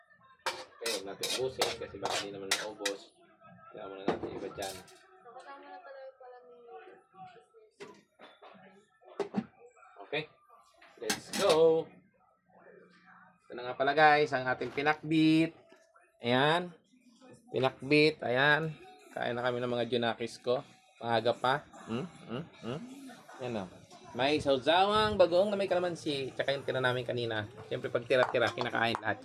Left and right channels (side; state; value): both; identical; correlation 1.00